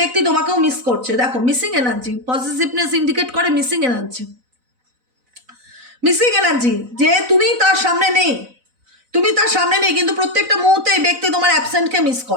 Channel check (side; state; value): left; late; 4.0 ms